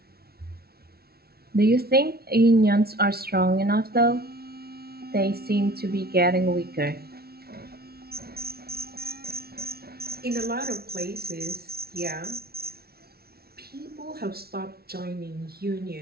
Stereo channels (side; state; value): left; late; 0.45 ms